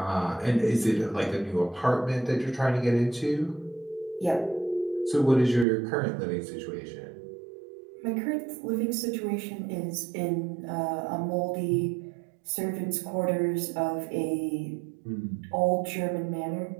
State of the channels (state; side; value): drops out; left; at 5.7 s